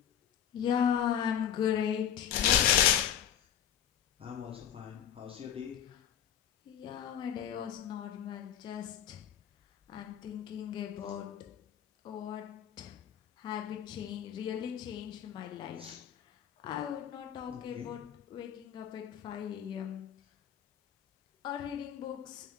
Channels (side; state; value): right; quieter; 9.5 dB